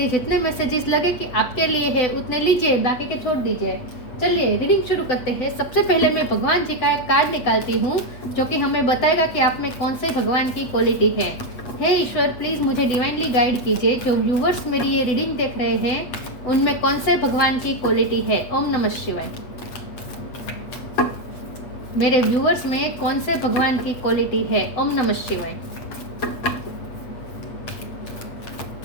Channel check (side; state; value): right; late; 8.0 ms